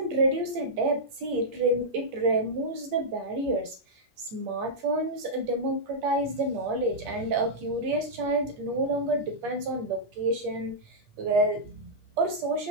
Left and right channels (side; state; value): left; late; 8.5 ms